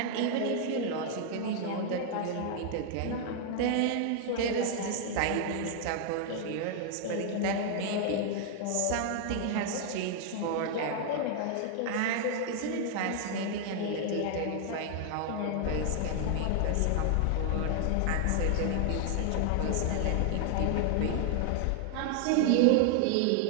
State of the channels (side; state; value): both; different; correlation 0.00